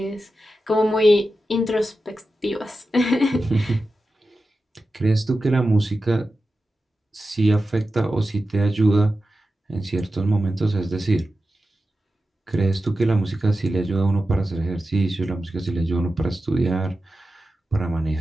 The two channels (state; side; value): normal; both; correlation 0.92